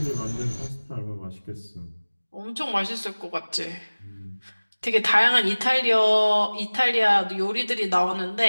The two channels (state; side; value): inverted; both; correlation -1.00